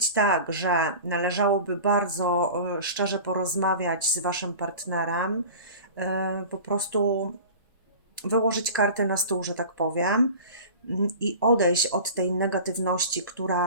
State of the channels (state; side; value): inverted; both; correlation -0.38